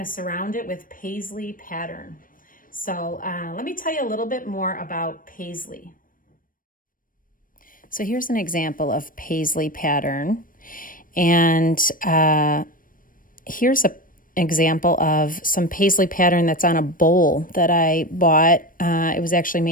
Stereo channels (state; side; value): late; right; 0.40 ms